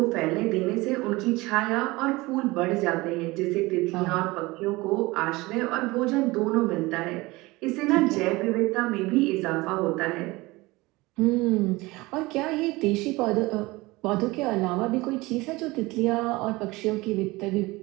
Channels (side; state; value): left; quieter; 21.6 dB